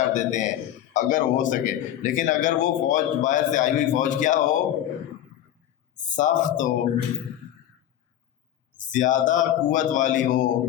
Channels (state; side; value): quieter; right; 11.6 dB